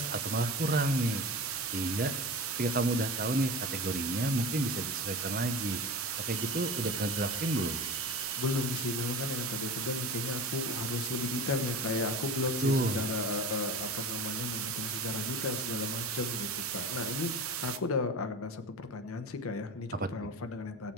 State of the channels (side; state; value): both; normal; correlation 0.32